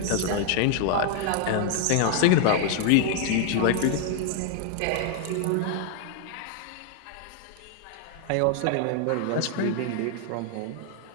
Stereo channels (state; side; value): different; both; correlation 0.00